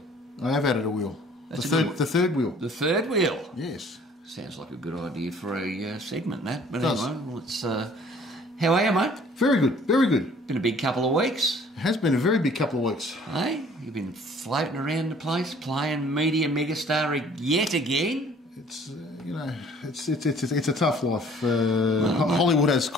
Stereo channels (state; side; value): normal; both; correlation 0.54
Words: I have added a wheel. The third wheel. The third wheel? Yes. Sounds like a good idea for a segment, that. But Does. anyway, let's... how are you, mate? Very good, very good. Been a big couple of weeks. It has been a very big couple of weeks. Hey, you've been floating around the place, playing media megastar yet again. It's you know, it's a tough life. Hollywood has